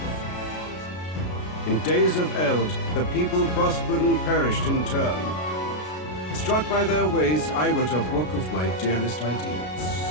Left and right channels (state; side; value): late; right; 33 ms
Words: In days of eld, the people prospered and perished in turn. Struck by their ways, I wrote a book of my dearest ideas.